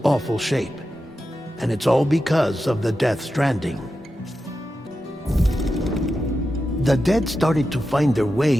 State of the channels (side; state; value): both; normal; correlation 0.90